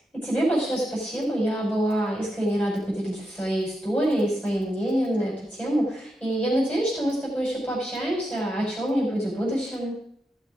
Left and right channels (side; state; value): both; normal; correlation 0.85